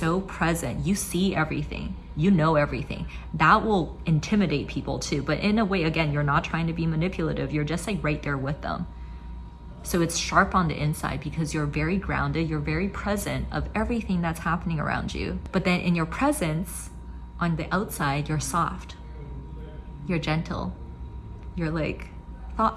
present. You see everything. You know everything. That will intimidate people too. But in a way, again, you're not trying to be manipulative. You're just like right there with them. So it's sharp on the inside because you're very grounded. You're very present of everything that's happening around you. But then in your presence, on the outside, you're soft. You're gentle. You're like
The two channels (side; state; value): both; identical; correlation 1.00